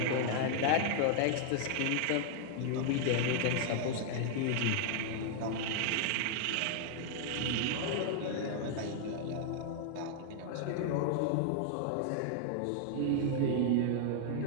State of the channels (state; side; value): different; both; correlation 0.00